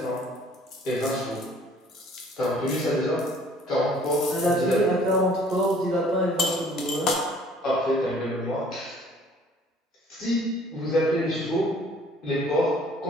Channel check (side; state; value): both; normal; correlation 0.55